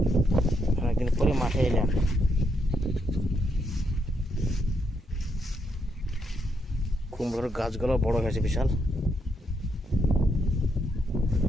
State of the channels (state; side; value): normal; both; correlation 0.78